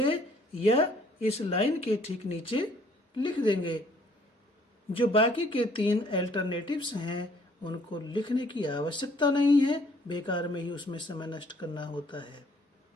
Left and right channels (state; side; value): normal; both; correlation 0.61